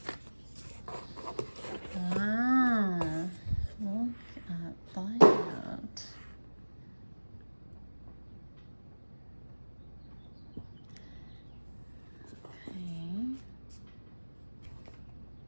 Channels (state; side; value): inverted; both; correlation -1.00